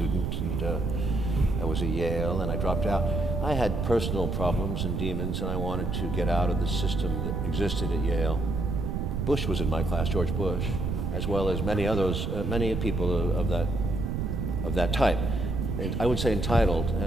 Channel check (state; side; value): noise; right; rumble, 1 dB below the sound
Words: and I was at Yale, and I dropped out. I had personal problems and demons, and I wanted to get out of the system that existed at Yale. Bush was in my class, George Bush, as well as many others, many people of that type. And I would say entitled,